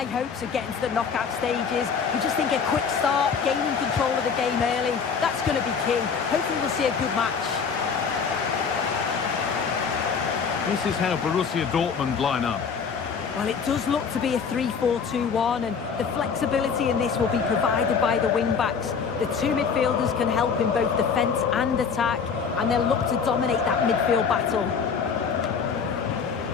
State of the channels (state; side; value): quieter; right; 6.1 dB